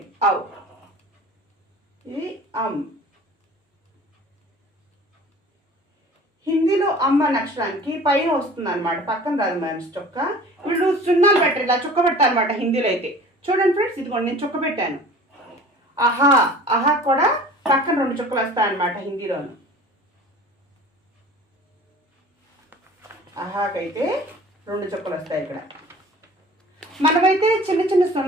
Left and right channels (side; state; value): both; normal; correlation 0.44